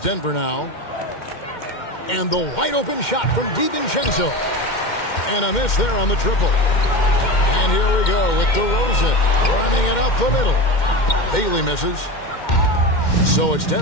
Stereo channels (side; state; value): right; late; 2.1 ms